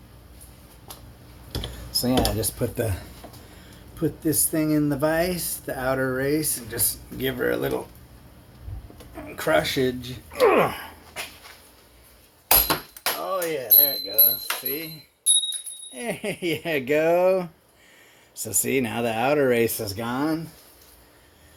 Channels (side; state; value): both; identical; correlation 1.00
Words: So yeah, I just put this thing in the vise, the outer race, and just give her a little crushage. Oh yeah, there it goes. See? There you go. So see, now the outer race is gone.